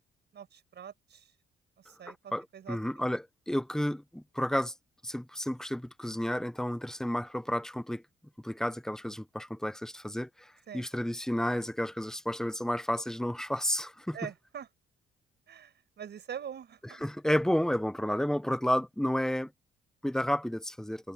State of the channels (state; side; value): normal; both; correlation 0.94